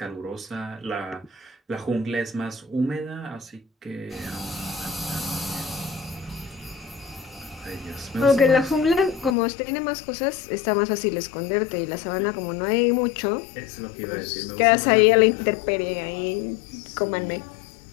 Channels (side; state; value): right; drops out; at 9.3 s